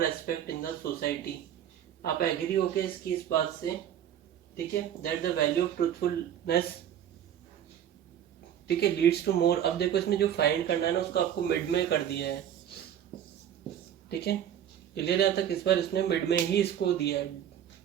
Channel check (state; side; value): quieter; left; 10.0 dB